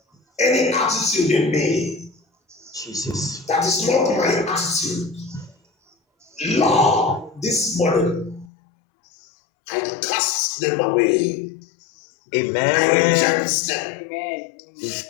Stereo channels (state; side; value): drops out; right; at 8.5 s